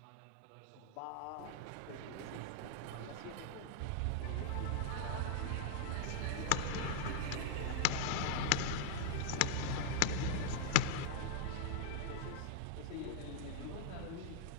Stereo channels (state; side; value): different; both; correlation -0.01